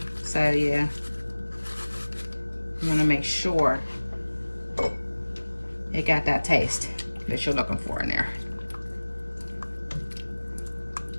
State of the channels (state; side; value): inverted; both; correlation -1.00